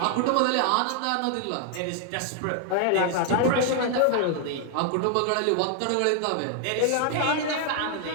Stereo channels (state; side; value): different; both; correlation 0.00